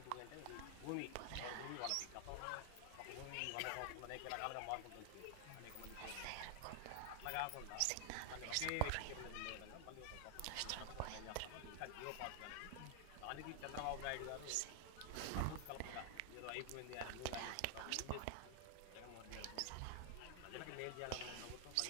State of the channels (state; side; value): different; both; correlation 0.00